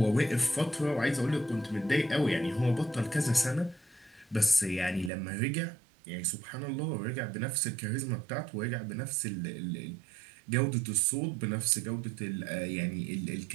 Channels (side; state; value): left; drops out; at 5.1 s